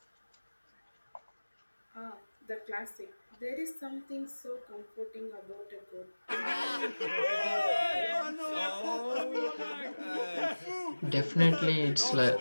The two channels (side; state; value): both; inverted; correlation -1.00